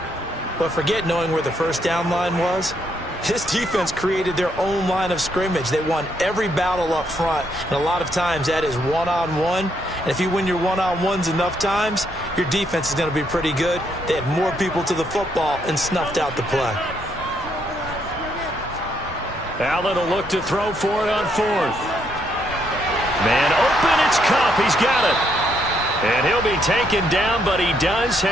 But forget knowing where the first down line was. This defense created their own line of scrimmage. They won every battle up front. And a lot of times that is one-on-one. And if you win your one-on-ones enough times, your defense is going to be pretty good. They had more people to the football and snuffed out the play. Allen will look to throw for it on fourth. Man open, it's Kupp. He's got it. And he'll be taken down, but he does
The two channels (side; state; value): both; normal; correlation 0.74